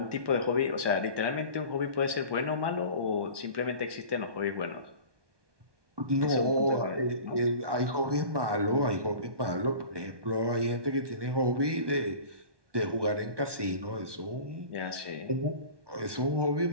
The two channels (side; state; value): left; late; 1.2 ms